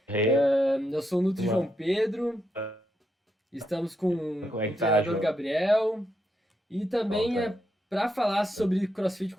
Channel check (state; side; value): normal; both; correlation 0.81